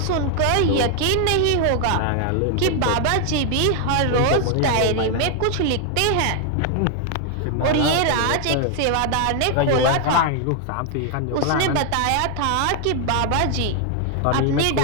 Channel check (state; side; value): different; both; correlation 0.00